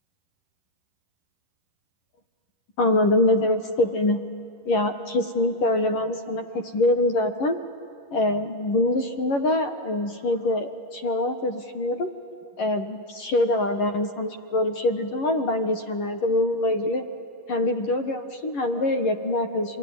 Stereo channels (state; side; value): late; right; 11 ms